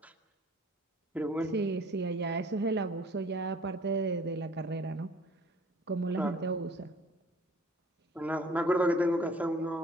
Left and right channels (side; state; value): both; normal; correlation 0.52